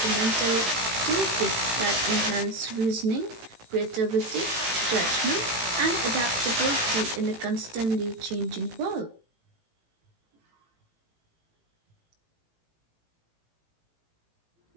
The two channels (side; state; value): left; late; 18 ms